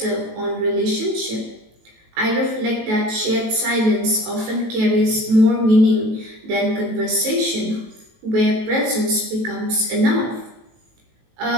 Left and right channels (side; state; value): left; late; 18 ms